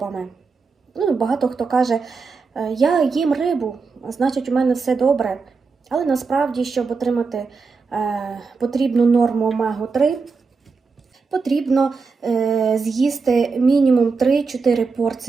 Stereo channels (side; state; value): left; quieter; 4.7 dB